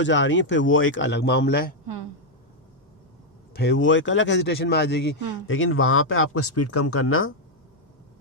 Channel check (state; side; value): normal; both; correlation -0.01